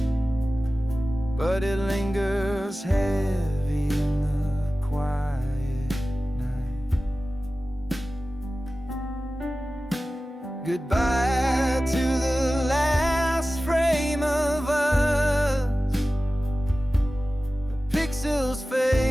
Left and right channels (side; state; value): both; normal; correlation 0.96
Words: but it lingers heavy in the quiet. Goodbye to the last frame of us. The pixels